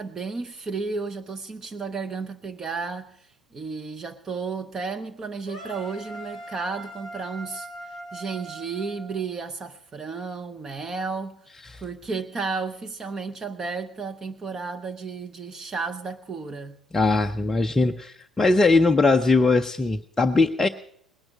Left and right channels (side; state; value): both; normal; correlation 0.79